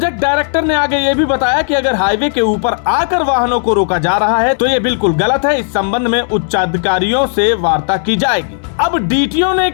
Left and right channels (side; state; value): right; silent; digital silence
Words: डायरेक्टर ने आगे ये भी बताया कि अगर हाईवे के ऊपर आकर वाहनों को रोका जा रहा है तो ये बिल्कुल गलत है। इस संबंध में उच्चाधिकारियों से वार्ता की जाएगी। अब डीटीओ ने